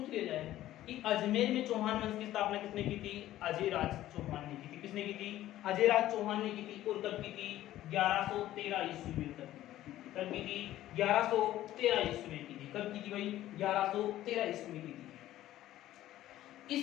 लिया जाए कि अजमेर में चौहान वंश की स्थापना किसने की थी? अजयराज चौहान ने की थी। किसने की थी? अजयराज चौहान ने की थी। और कब की थी? 1113 ईस्वी में। कब की थी? 1113 ईस्वी में की थी। कब की थी भाई? 1113 ईस्वी में की थी।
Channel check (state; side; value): quieter; right; 14.0 dB